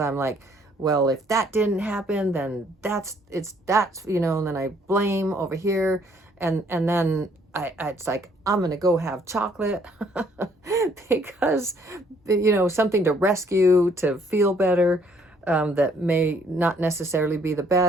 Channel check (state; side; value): normal; both; correlation 0.64